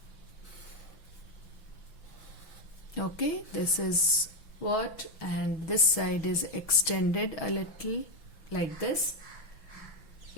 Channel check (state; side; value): late; right; 6.3 ms